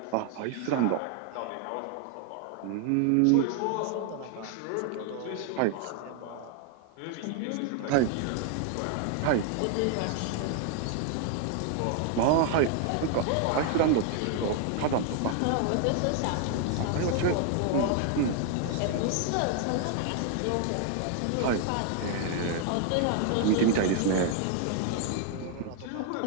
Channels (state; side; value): different; both; correlation 0.00